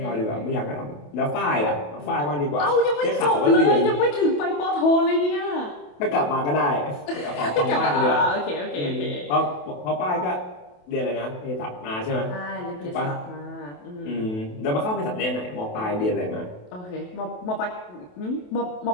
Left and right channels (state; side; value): late; right; 28 ms